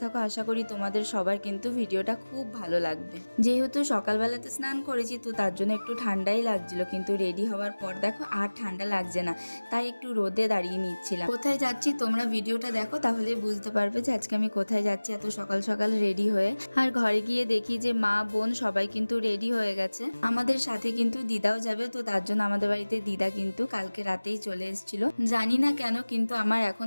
থাকো। আশা করি তোমাদের সবার কিন্তু ভিডিওটা খুব ভালো লাগবে। যেহেতু সকালবেলাতে স্নান করেছি তো তার জন্য একটু ঠান্ডাই লাগছিল, কিন্তু রেডি হওয়ার পর দেখো আর ঠান্ডা লাগছে না, তাই একটু রোদে দাঁড়িয়ে নিচ্ছিলাম। কোথায় যাচ্ছি তোমরা ভিডিওটা দেখো, তাহলে বুঝতে পারবে যে আজকে আমি কোথায় যাচ্ছি এত সকাল সকাল রেডি হয়ে। আর ঘরে গিয়ে দেখি যে মা বোন সবাই কিন্তু রেডি হয়ে গেছে। আমাদের সাথে কিন্তু দিদাও যাবে, তো তার জন্য আমাদের বাড়িতে দিদা কিন্তু কালকে রাতেই চলে এসেছিল। জানি না কেন কিন্তু আমার এখন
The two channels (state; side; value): inverted; both; correlation -1.00